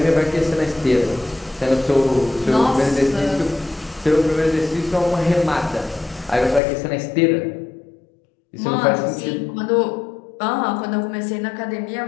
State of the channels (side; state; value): right; drops out; at 6.6 s